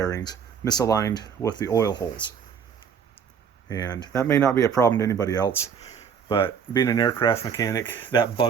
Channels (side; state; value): left; quieter; 7.1 dB